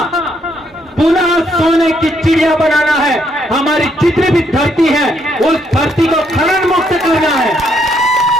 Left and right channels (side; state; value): both; normal; correlation 0.73